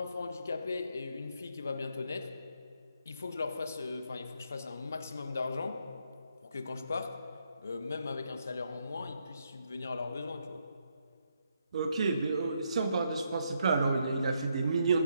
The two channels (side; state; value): both; inverted; correlation -0.77